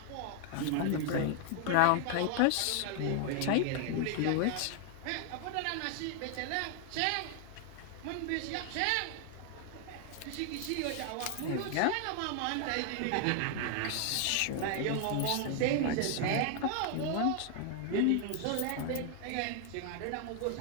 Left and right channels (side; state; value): both; different; correlation 0.00